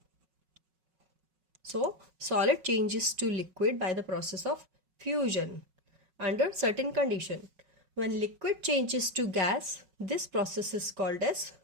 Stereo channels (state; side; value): late; left; 5.4 ms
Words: So solid changes to liquid by the process of fusion under certain condition. When liquid changes to gas, this process is called as